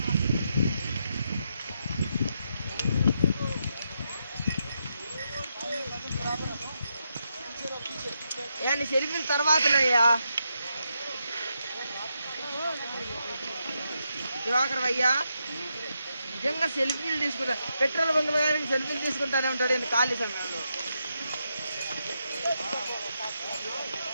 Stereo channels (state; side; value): inverted; both; correlation -0.83